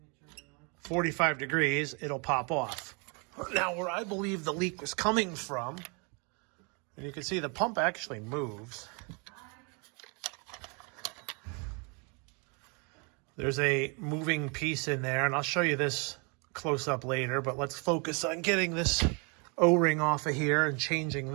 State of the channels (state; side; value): quieter; left; 33.1 dB